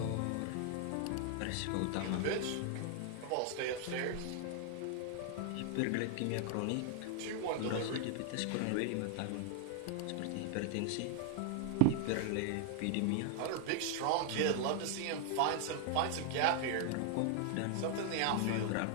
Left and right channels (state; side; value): different; both; correlation 0.00